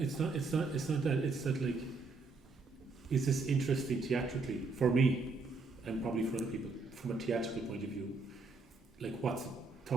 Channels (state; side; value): quieter; left; 3.9 dB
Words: it's not that. It's that, like, is this interesting theatrically for me and probably for other people from a theatrical point of view? Like, what's